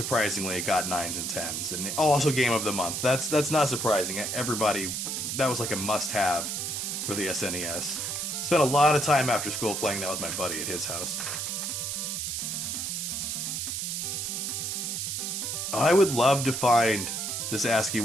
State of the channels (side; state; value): right; noise; hiss, 2 dB below the sound